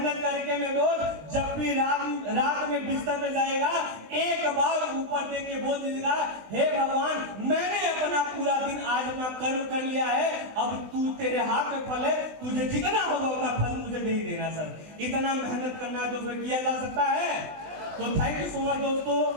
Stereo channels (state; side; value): late; left; 19 ms